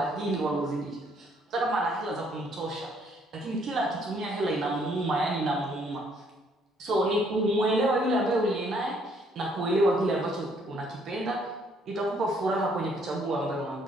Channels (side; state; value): both; normal; correlation 0.66